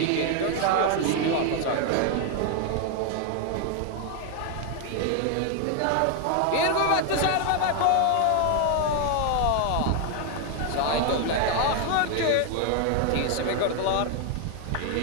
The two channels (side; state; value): both; different; correlation 0.01